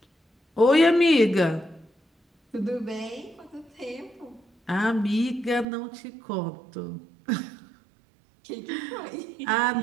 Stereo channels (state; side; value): drops out; left; at 5.7 s